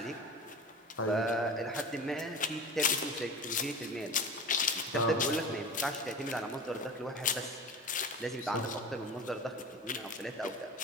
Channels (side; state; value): both; normal; correlation 0.33